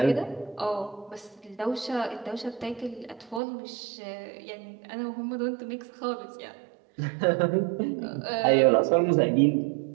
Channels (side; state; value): left; drops out; at 3.4 s